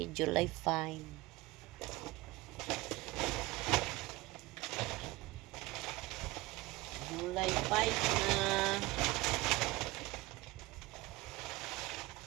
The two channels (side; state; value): left; quieter; 20.6 dB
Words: July 5. July 5 na.